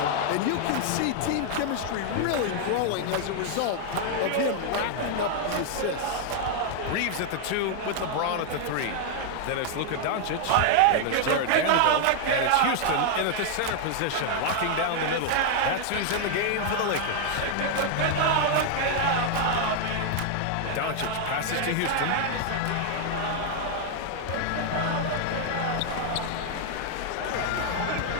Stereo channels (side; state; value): both; different; correlation 0.00